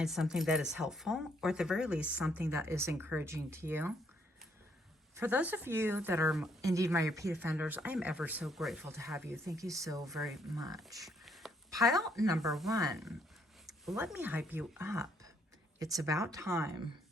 something that is helpful, or at the very least, something that is encouraging to you. For those of you that are indeed my repeat offenders, I am ever so grateful to have you. Thank you so very much. Pile number 1. Let me hype you up. It's about time.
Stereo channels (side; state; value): both; normal; correlation 0.70